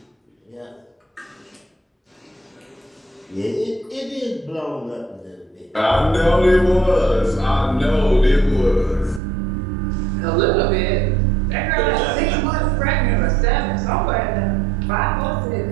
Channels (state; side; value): drops out; left; at 9.2 s